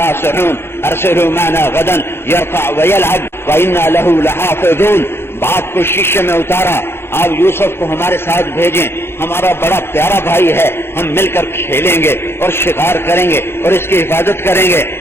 ارسلوا معنا غدا يرفع ويلعب وإنا له لحافظون. باپ کو شیشے میں اتارا، آپ یوسف کو ہمارے ساتھ بھیجیں، ہمارا بڑا پیارا بھائی ہے، ہم مل کر کھیلیں گے اور شکار کریں گے اور اس کی حفاظت کریں گے.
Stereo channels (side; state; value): right; late; 0.11 ms